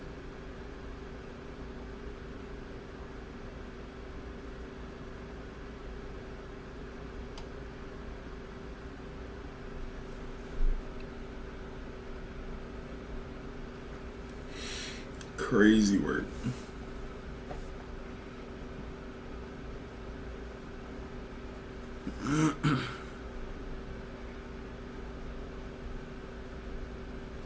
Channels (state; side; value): identical; both; correlation 1.00